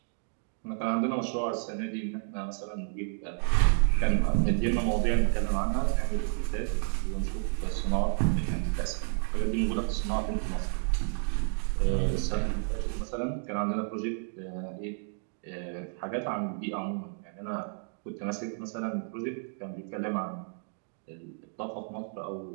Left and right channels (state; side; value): silent; left; digital silence